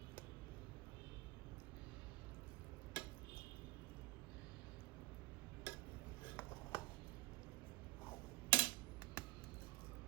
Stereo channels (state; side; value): quieter; left; 21.6 dB